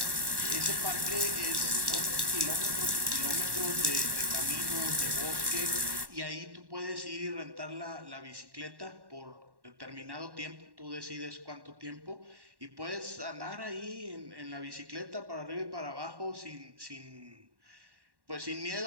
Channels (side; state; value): left; late; 1.1 ms